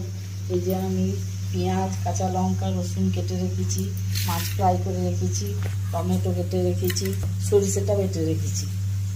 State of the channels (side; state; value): both; identical; correlation 1.00